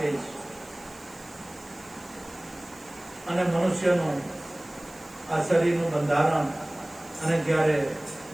છે. અને મનુષ્યનું આ શરીરનું બંધારણ, અને જ્યારે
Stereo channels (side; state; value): right; noise; hiss, 23 dB below the sound